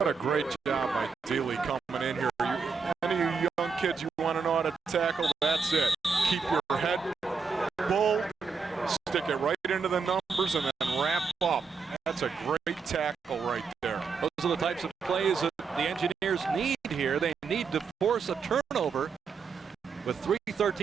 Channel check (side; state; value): left; quieter; 5.2 dB